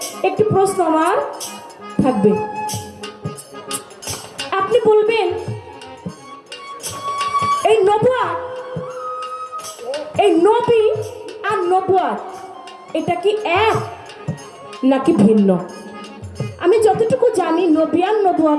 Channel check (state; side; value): identical; both; correlation 1.00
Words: একটি প্রশ্ন আমার থাকবে। আপনি বলবেন এই নবুয়ত, এই নবী আর নবুয়ত এটা কি এক নাকি ভিন্ন? আমি যতটুকু জানি নবী আর